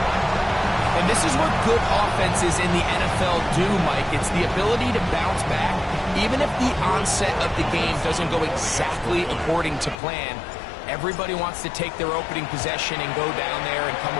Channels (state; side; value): drops out; right; at 10.0 s